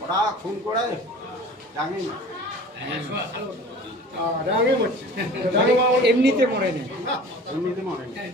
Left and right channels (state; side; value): normal; both; correlation 0.42